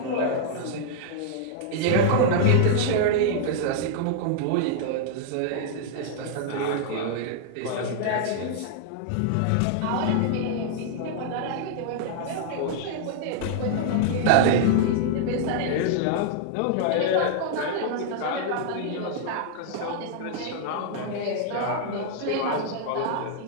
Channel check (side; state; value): both; different; correlation -0.01